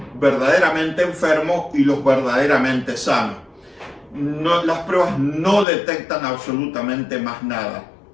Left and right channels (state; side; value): drops out; right; at 5.7 s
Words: verdaderamente enfermos y los verdaderamente sanos. Las pruebas no detectan absolutamente más nada.